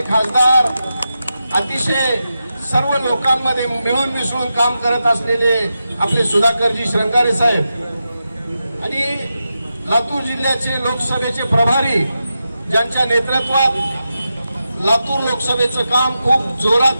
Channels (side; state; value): both; inverted; correlation -0.89